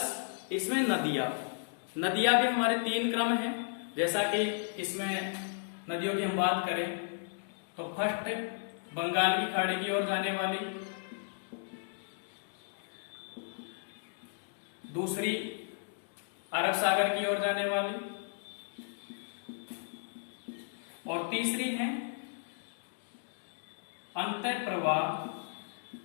इसमें नदियां भी हमारे तीन क्रम हैं। जैसा कि इसमें नदियों की हम बात करें तो फर्स्ट बंगाल की खाड़ी की ओर जाने वाली, दूसरी अरब सागर की ओर जाने वाली और तीसरी है अंतः प्रवाह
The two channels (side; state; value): right; silent; digital silence